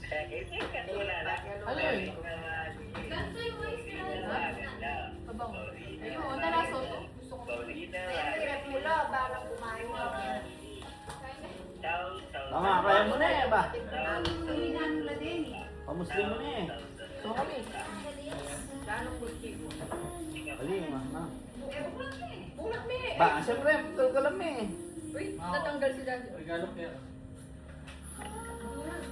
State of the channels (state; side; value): identical; both; correlation 1.00